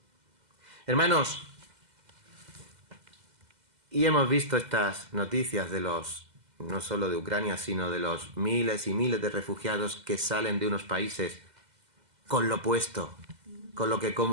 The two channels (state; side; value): late; left; 2.0 ms